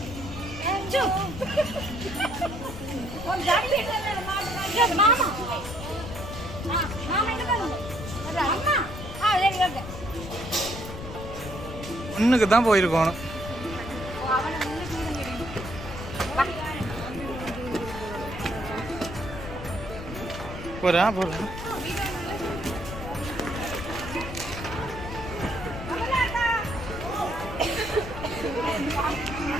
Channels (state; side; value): noise; left; rumble, 10 dB below the sound